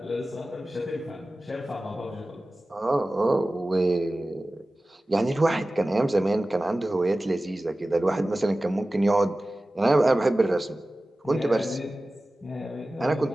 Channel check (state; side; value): normal; both; correlation 0.96